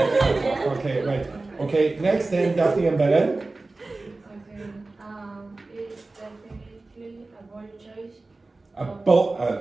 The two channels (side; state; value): left; quieter; 3.3 dB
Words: Okay, right. Okay, next then, Daphne and Belen. Okay, it's definitely a bold choice. A